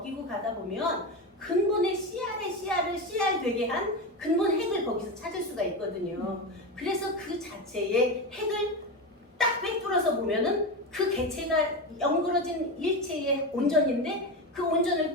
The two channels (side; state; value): both; normal; correlation 0.18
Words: 가다 보면 근본의 씨알의 씨알을 씨알 되게 한 근본 핵을 거기서 찾을 수가 있거든요. 그래서 그 자체의 핵을 딱 꿰뚫어서 보면은 그 개체가 엉그러진 일체의 온전인데 그 온전을